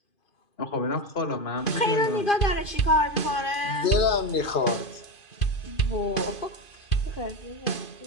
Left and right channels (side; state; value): right; late; 2.5 ms